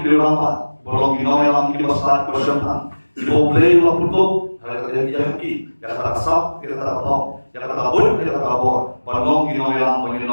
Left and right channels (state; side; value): inverted; both; correlation -1.00